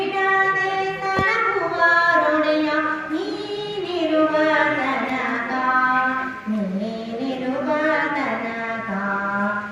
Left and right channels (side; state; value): both; identical; correlation 1.00